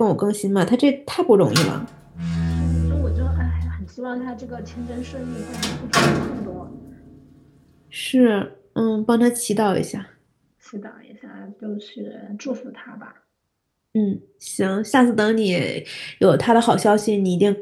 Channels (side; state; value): both; identical; correlation 1.00